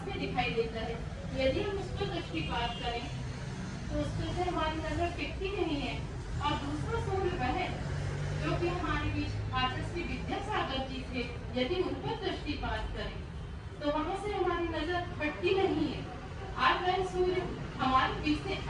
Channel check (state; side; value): identical; both; correlation 1.00